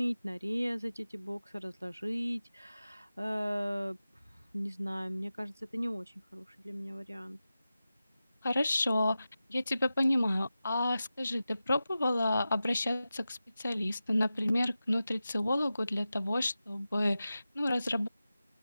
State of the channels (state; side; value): inverted; both; correlation -0.94